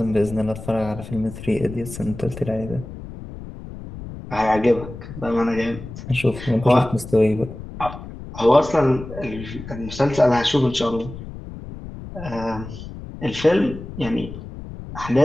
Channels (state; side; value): noise; left; rumble, 12 dB below the sound